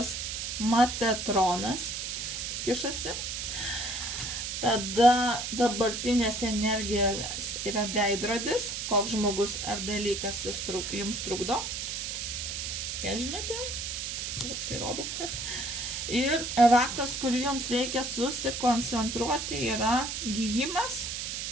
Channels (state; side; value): noise; right; hiss, 4 dB below the sound